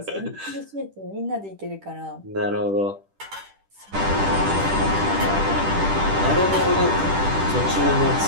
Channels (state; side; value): late; left; 10 ms